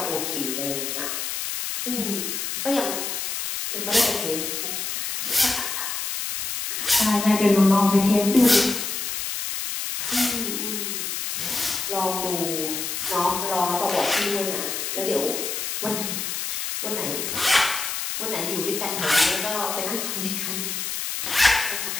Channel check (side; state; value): left; noise; hiss, 3 dB below the sound